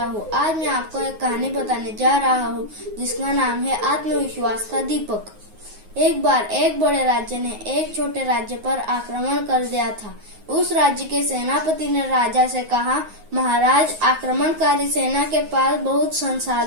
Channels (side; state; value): left; late; 9.5 ms